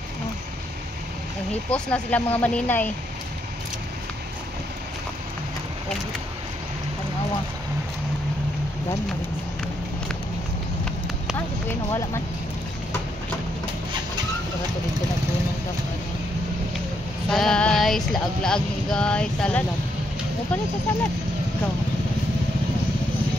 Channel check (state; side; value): normal; both; correlation 0.76